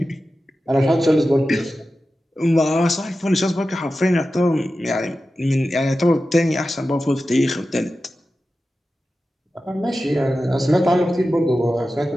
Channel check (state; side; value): normal; both; correlation 0.93